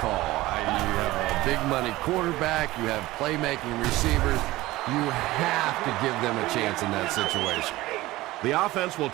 You have a big money quarterback, you have playmaking receivers. You have to give them a chance in that situation. The offense will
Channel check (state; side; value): quieter; left; 18.2 dB